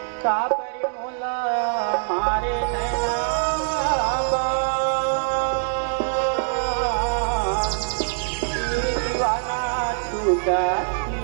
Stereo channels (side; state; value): left; silent; digital silence